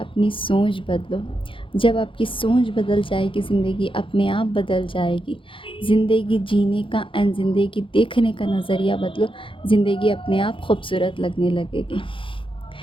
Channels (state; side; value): late; right; 0.25 ms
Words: सोच बदलो। जब आपकी सोच बदल जाएगी, ज़िंदगी अपने आप बदल जाएगी। ज़िंदगी जीने का एंड ज़िंदगी देखने का नज़रिया बदलो, ज़िंदगी अपने आप खूबसूरत लगने लगेगी।